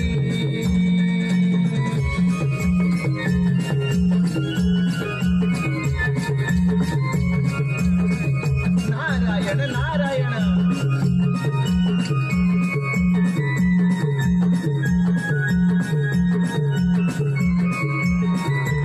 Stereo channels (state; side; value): identical; both; correlation 1.00